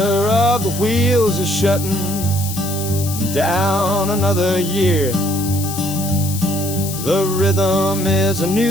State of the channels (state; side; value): noise; left; hiss, 8 dB below the sound